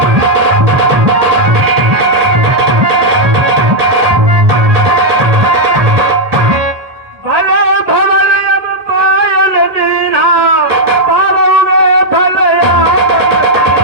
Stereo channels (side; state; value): left; late; 1.5 ms